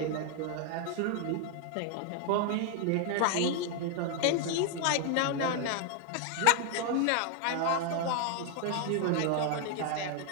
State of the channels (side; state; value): both; different; correlation 0.00